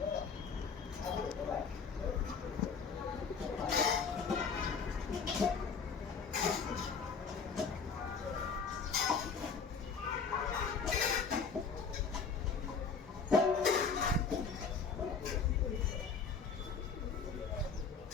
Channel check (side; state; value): right; quieter; 5.5 dB